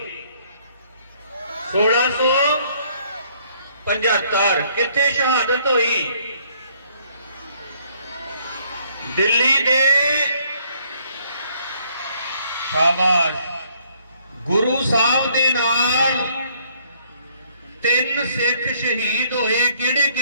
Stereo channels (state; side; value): inverted; both; correlation -0.65